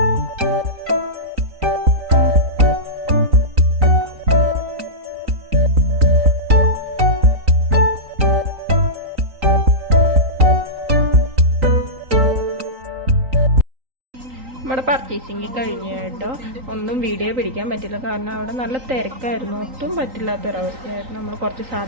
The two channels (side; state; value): left; late; 3.9 ms